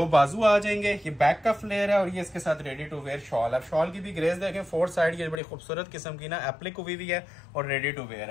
बाजू आ जाएंगे। ये बैक का फ्लेयर है और ये इसके साथ रेडी टू वेयर शॉल है। शॉल की भी ग्रेस देखें, 4 साइड ये बड़ी खूबसूरत किस्म की ना एप्लिक हुई भी है और रेडी टू वेयर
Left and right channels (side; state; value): right; drops out; at 5.4 s